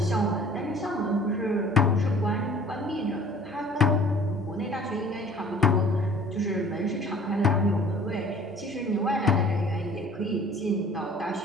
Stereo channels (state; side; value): normal; both; correlation 0.50